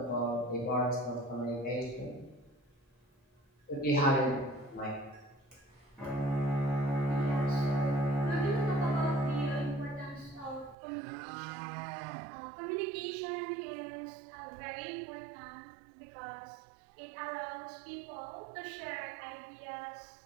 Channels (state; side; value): drops out; left; at 10.8 s